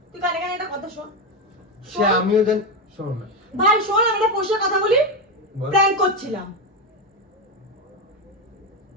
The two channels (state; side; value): normal; both; correlation 0.11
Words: তুই কানে একটা কথা শোন। সে আমিও জানি, শোন না ভাই শোন, আমি একটা পোষার কথা বলি। বল। প্র্যাঙ্ক করছিলাম,